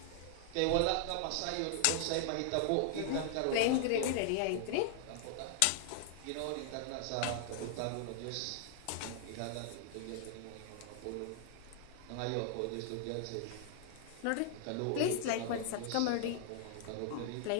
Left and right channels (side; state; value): both; different; correlation 0.00